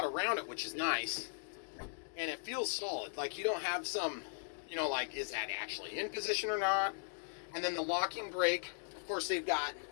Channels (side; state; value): right; silent; digital silence